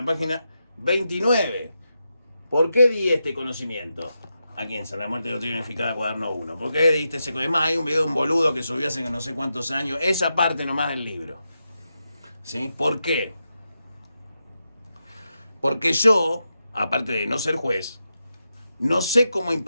página 29. ¿Por qué di este conocimiento? Aquí en San la Muerte Doctrina Unificada, cuaderno 1. ¿Por qué diste ese conocimiento? Hay un video de un boludo que subió hace no sé cuántos años, esa parte nomás del libro, ¿sí? ¿Por qué? Porque yo, aparte de no ser juez, no sé cómo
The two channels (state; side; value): inverted; both; correlation -0.87